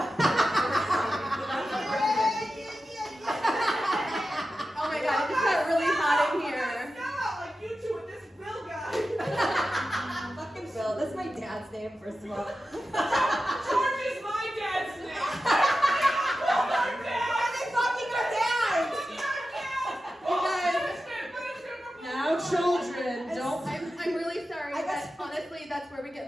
my god, it just got really hot in here. Like you two and this Bill guy. Fucking Bill. That's my dad's name, first of all. George is my dad's name. Why are they fucking our dads? Now, children, don't. I'm really sorry, I guess- but honestly, that's where we get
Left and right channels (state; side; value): normal; both; correlation 0.92